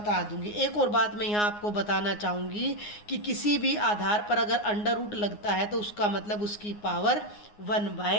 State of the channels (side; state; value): right; late; 9.6 ms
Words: दूंगी। एक और बात मैं यहाँ आपको बताना चाहूँगी कि किसी भी आधार पर अगर अंडर रूट लगता है तो उसका मतलब उसकी पावर